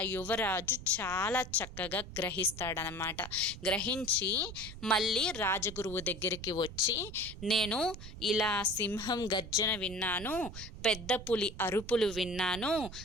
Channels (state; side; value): noise; right; rumble, 12 dB below the sound